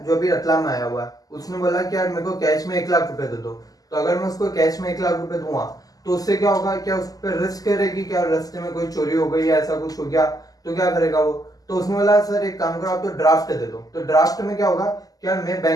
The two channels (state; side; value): late; right; 0.17 ms